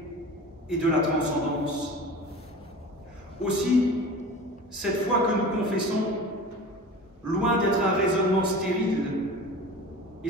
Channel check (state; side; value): normal; both; correlation 0.36